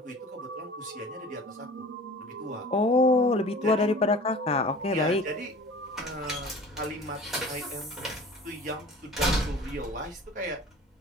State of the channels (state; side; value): normal; both; correlation 0.42